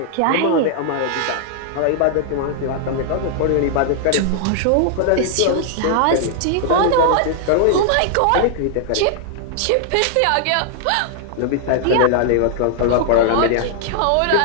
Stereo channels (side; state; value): both; different; correlation -0.01